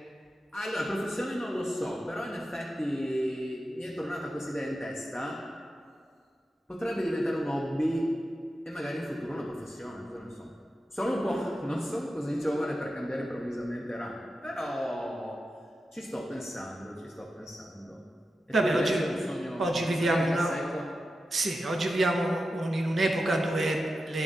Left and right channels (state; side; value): normal; both; correlation 0.91